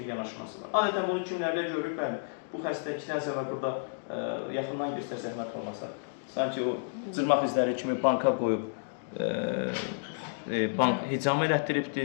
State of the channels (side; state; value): right; silent; digital silence